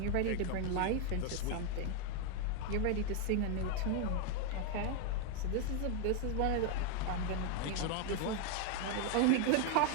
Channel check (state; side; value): different; both; correlation 0.01